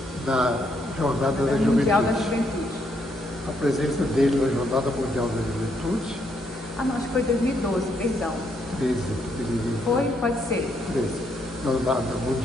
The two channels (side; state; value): both; normal; correlation 0.74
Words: na Jornada da Mundial da Juventude. A presença dele na Jornada Mundial da Juventude. Não, acho que foi 2012, perdão. 13. Foi? Pode ser. 13. Jornada